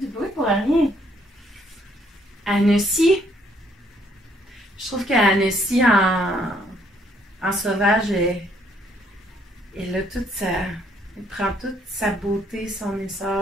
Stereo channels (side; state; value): both; normal; correlation 0.67